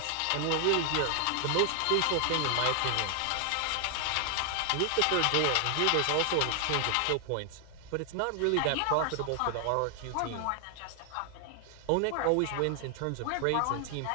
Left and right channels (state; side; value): different; both; correlation 0.00